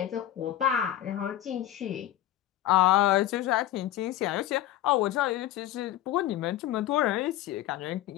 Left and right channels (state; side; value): quieter; right; 13.2 dB